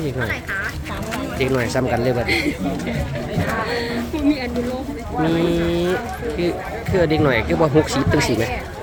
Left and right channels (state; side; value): identical; both; correlation 1.00